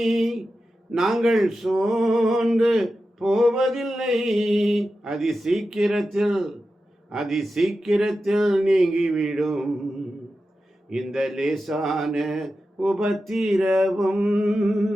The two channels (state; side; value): normal; both; correlation 0.92